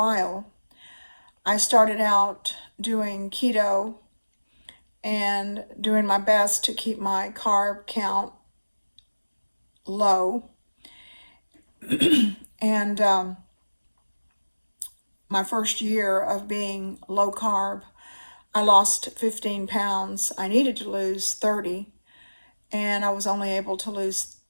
I started out doing keto and doing my best to keep my carb count low. And my first year of being low carb, I lost 15 pounds. I needed to lose 30, and I was only able to lose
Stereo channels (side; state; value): both; inverted; correlation -1.00